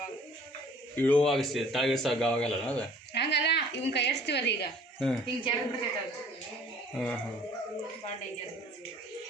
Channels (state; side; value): normal; both; correlation 0.53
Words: ಇಳುವಾಗ ತಳಗಿಸಾಗ ಅವಾಗಲ್ಲ ಅದು ಹಂಗಲ್ಲ, ಇವನ್ ಕೈಯಾಡಿಸ್ತೀವಲ್ಲ ಈಗ ಹಿಂಗೆ ಜಾರ್ ಬಿಡ್ತೈತೆ ಅದು. ಭಾಳ ಡೇಂಜರ್.